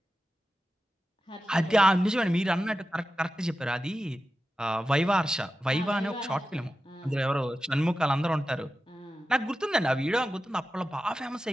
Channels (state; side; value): normal; both; correlation 0.92